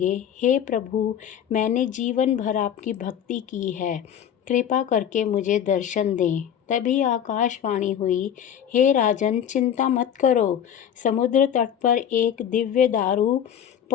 हे प्रभु, मैंने जीवन भर आपकी भक्ति की है, कृपा करके मुझे दर्शन दें। तभी आकाशवाणी हुई, हे राजन, चिंता मत करो। समुद्र तट पर एक दिव्य दारू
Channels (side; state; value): right; quieter; 9.3 dB